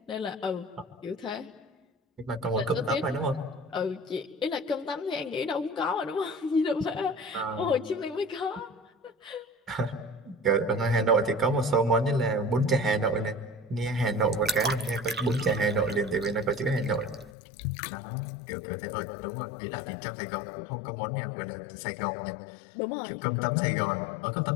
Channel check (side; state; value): right; drops out; at 17.3 s